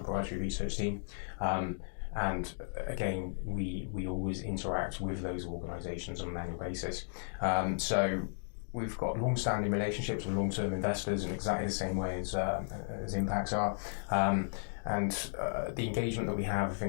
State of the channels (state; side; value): silent; right; digital silence